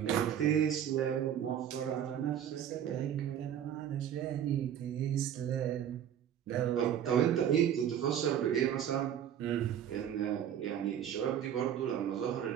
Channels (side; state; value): left; quieter; 9.6 dB